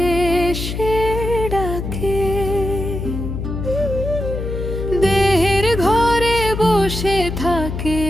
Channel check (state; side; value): noise; left; hum, 5 dB below the sound